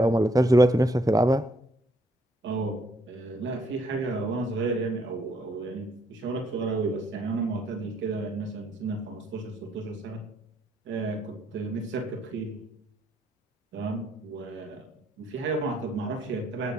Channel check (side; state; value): both; normal; correlation 0.70